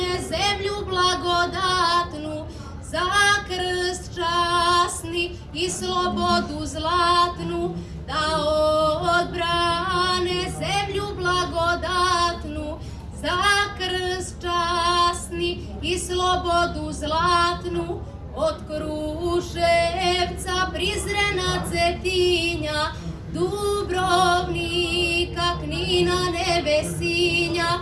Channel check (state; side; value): identical; both; correlation 1.00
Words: zemlju blagodatnu, za krst časni i slobodu zlatnu, da odbrane zemlju blagodatnu, za krst časni i slobodu zlatnu, od Kruševca, Prizrena, Cetinja, Dubrovnika, Knina, Nevesinja,